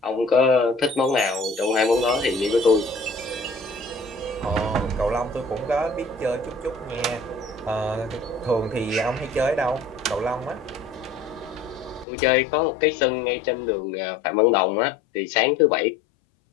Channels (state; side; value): drops out; right; at 12.1 s